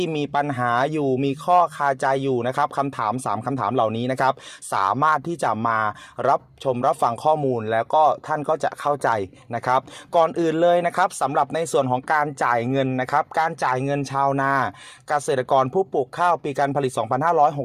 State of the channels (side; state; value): both; identical; correlation 1.00